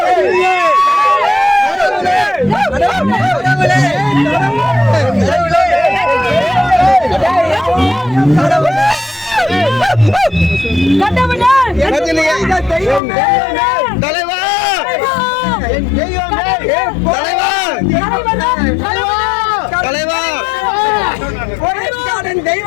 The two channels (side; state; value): right; drops out; at 13.0 s